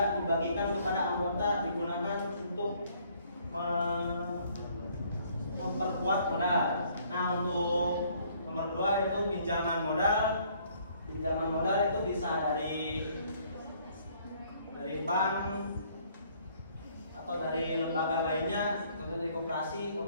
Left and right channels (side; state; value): both; inverted; correlation -0.62